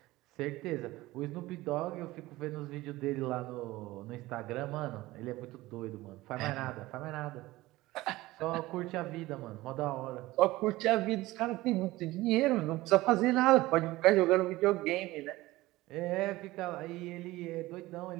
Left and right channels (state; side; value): quieter; left; 18.5 dB